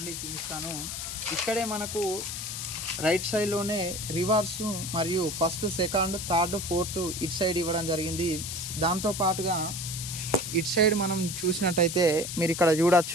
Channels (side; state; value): left; noise; hiss, 5 dB below the sound